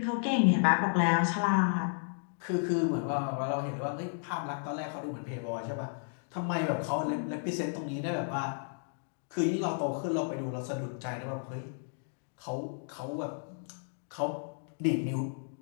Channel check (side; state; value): right; silent; digital silence